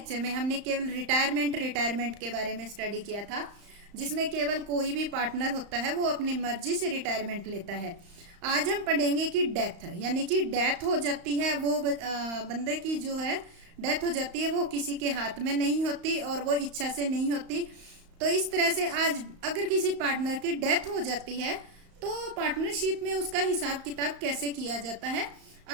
में हमने केवल रिटायरमेंट के बारे में स्टडी किया था, जिसमें केवल कोई भी पार्टनर होता है वो अपनी मर्जी से रिटायरमेंट लेता है। आज हम पढ़ेंगे कि डेथ यानी कि डेथ हो जाती है, वो बंदे की जो है डेथ हो जाती है, वो किसी के हाथ में नहीं होती और वो इच्छा से नहीं होती। तो इस तरह से आज अगर किसी पार्टनर की डेथ हो जाती है तो पार्टनरशिप में उसका हिसाब किताब कैसे किया जाता है,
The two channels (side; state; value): left; late; 35 ms